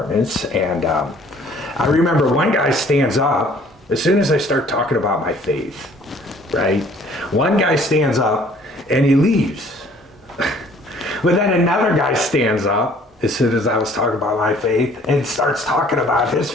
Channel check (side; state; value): both; normal; correlation 0.56